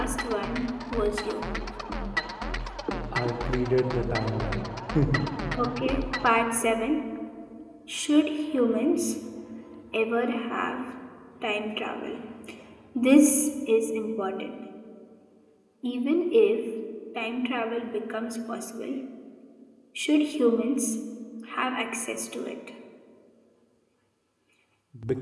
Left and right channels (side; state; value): both; identical; correlation 1.00